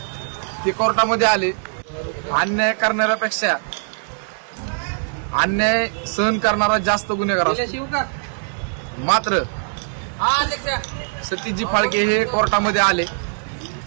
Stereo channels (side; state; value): left; silent; digital silence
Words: ते कोर्टामध्ये आले. अन्याय करणाऱ्यापेक्षा अन्याय सहन करणारा जास्त गुन्हेगार असतो. मात्र सतीशजी फाळके हे कोर्टामध्ये आले.